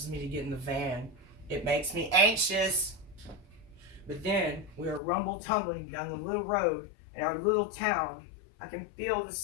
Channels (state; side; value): drops out; right; at 5.0 s